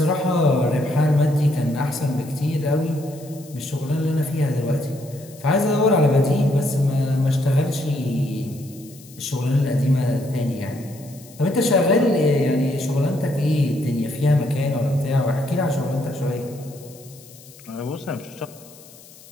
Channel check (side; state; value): left; noise; hiss, 22 dB below the sound